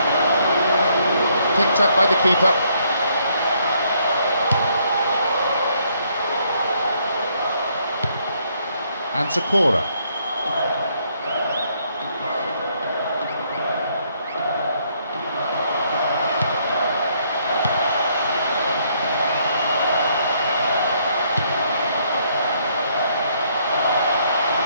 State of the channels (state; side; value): inverted; both; correlation -0.70